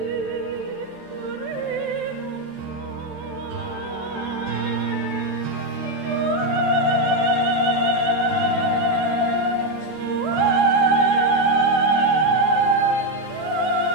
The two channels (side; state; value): right; late; 13 ms